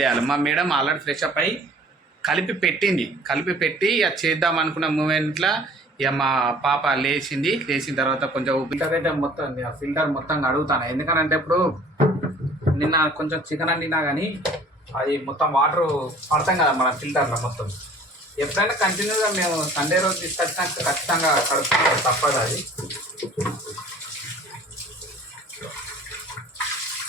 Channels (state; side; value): normal; both; correlation 0.50